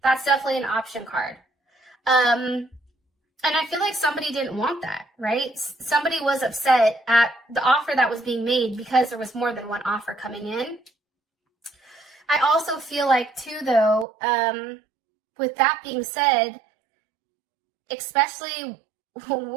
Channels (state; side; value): drops out; left; at 14.1 s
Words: that's definitely an option card. And I feel like somebody didn't want that, right? Somebody was upset at the offer that was being made because there was more than one offer coming in. I also feel like too, though, with that being said, especially